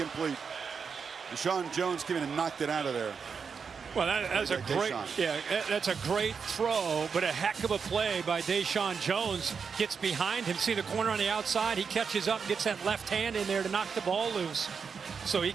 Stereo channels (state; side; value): quieter; left; 5.9 dB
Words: Deshaun Jones came in and knocked it out of there. Well, that's a great, that's a great throw, but a heck of a play by Deshaun Jones. Gets behind him, see the corner on the outside. He catches up, gets that left hand in there to knock the ball loose. So he